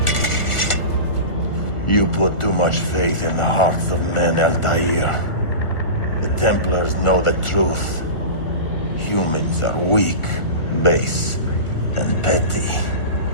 You put too much faith in the hearts of men, Altair. The Templars know the truth. Humans are weak, base, and petty.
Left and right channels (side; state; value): right; late; 1.4 ms